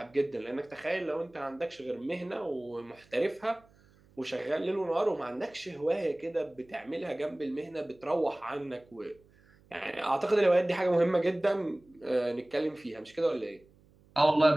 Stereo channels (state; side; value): noise; right; hum, 29 dB below the sound